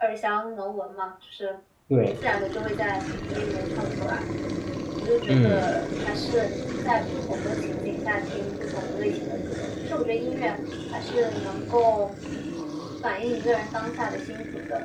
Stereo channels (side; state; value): both; identical; correlation 1.00